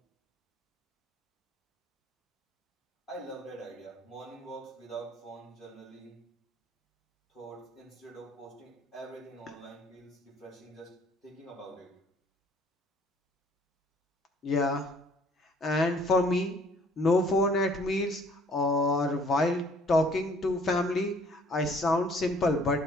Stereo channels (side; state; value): both; normal; correlation 0.58